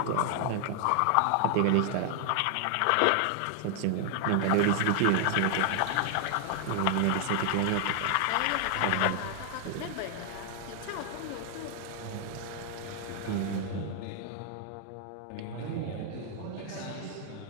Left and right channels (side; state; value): both; different; correlation 0.00